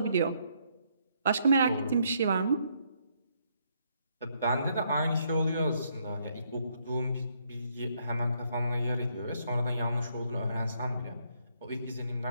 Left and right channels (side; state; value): both; inverted; correlation -0.72